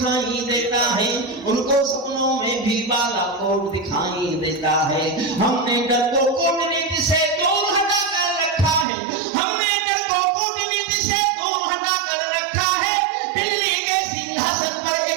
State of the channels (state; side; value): drops out; left; at 8.8 s